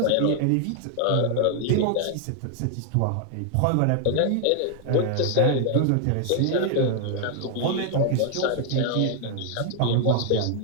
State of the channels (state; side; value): different; both; correlation 0.00